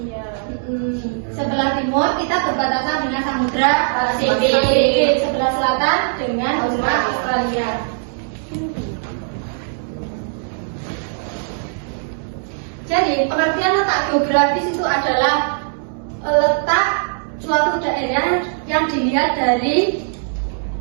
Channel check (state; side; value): silent; left; digital silence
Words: Sebelah timur kita berbatasan dengan Samudra Pasifik. Sebelah selatan dengan benua Australia. Jadi pengertian letak geografis itu adalah letak suatu daerah yang dilihat dari